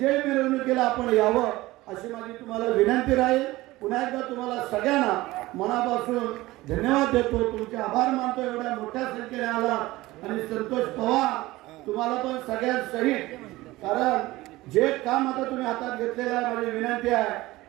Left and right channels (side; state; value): left; quieter; 18.8 dB